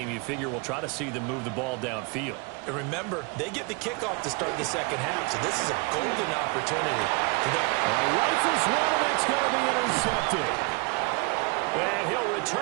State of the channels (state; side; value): quieter; left; 30.0 dB